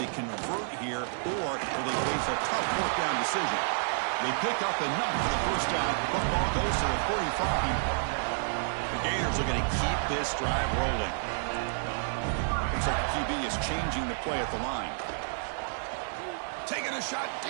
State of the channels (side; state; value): left; silent; digital silence